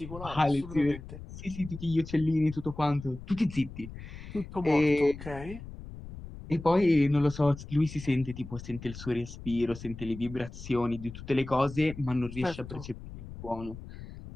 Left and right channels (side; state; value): left; noise; rumble, 13 dB below the sound